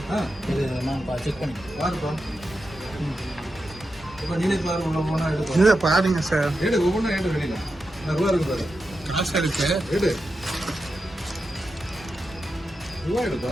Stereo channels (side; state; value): both; normal; correlation 0.89